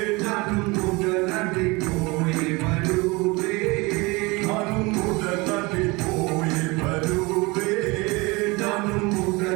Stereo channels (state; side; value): quieter; left; 25.1 dB